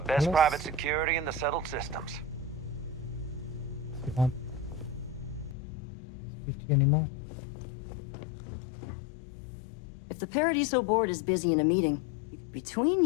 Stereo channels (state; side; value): drops out; right; at 5.6 s